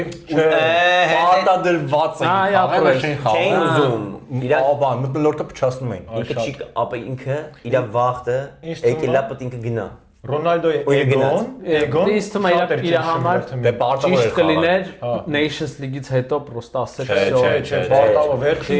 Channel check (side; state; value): both; identical; correlation 1.00